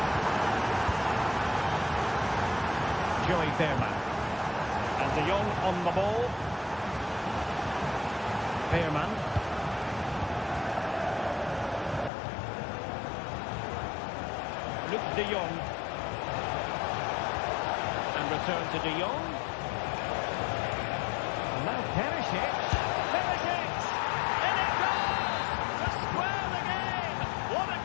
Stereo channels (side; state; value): right; drops out; at 12.1 s